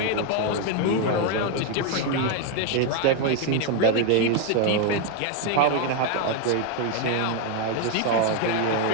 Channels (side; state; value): both; different; correlation 0.01